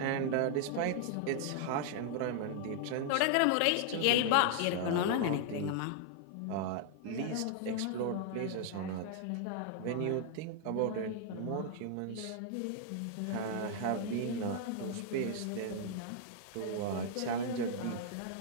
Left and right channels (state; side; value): different; both; correlation -0.01